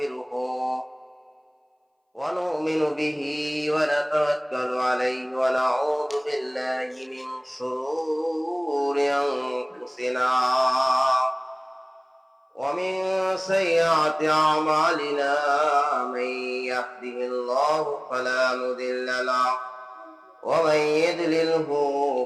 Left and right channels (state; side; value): identical; both; correlation 1.00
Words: ونؤمن به ونتوكل عليه ونعوذ بالله من شرور أنفسنا ومن سيئات أعمالنا من يهده الله فلا مضل له ومن يضلله